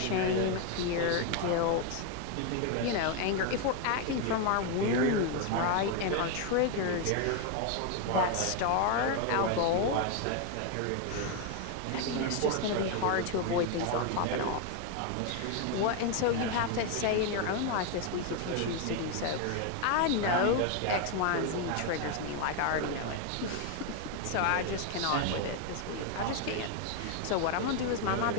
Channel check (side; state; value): both; different; correlation 0.01